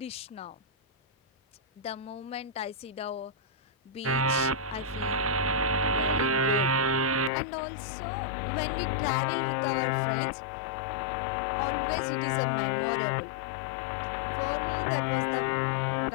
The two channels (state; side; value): drops out; right; at 7.3 s